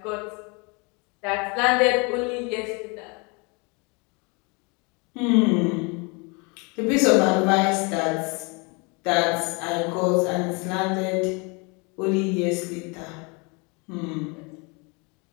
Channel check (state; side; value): quieter; right; 30.6 dB